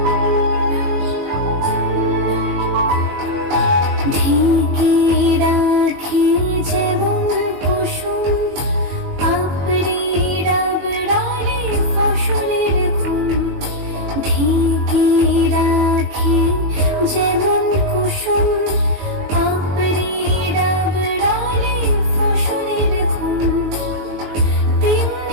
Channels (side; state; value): left; late; 21 ms